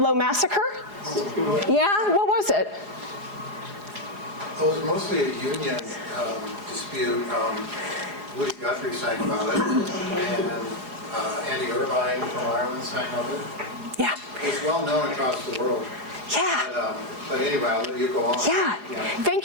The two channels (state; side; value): late; left; 4.8 ms